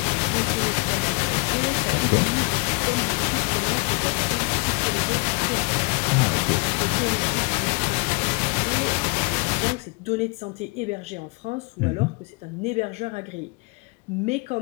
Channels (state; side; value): quieter; right; 29.1 dB